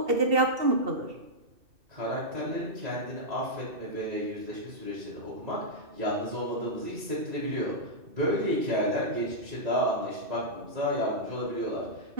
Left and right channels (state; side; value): late; left; 2.6 ms